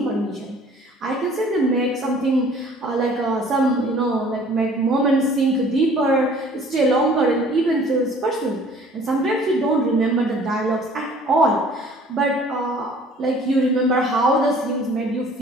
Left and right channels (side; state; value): both; normal; correlation 0.52